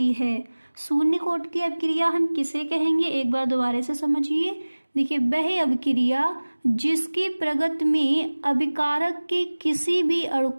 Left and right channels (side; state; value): both; inverted; correlation -1.00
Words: है। शून्य कोटि की अपक्रिया हम किसे कहेंगे, एक बार दोबारा से समझिए। देखिए वह अपक्रिया जिसकी प्रगति में अभिकारक के किसी भी अणु